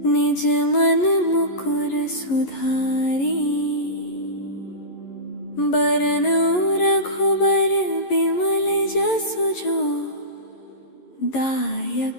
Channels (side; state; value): right; late; 11 ms